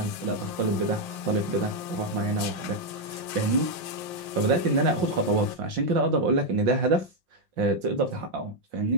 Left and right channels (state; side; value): late; left; 5.7 ms